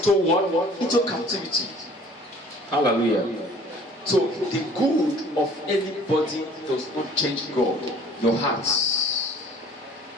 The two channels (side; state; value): both; normal; correlation 0.51